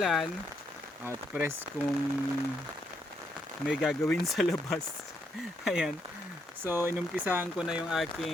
at press kung may gagawin sa labas. Ayan. So inumpisahan ko na yung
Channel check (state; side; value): normal; both; correlation 0.76